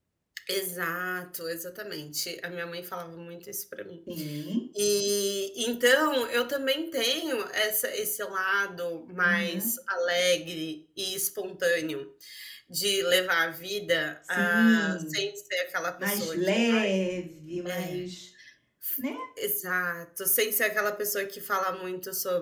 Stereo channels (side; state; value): both; identical; correlation 1.00